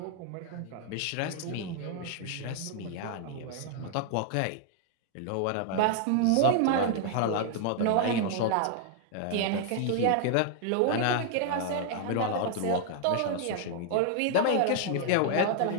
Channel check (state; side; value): different; both; correlation 0.00